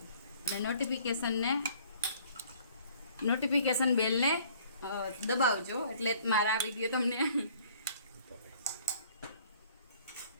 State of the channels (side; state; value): both; inverted; correlation -0.56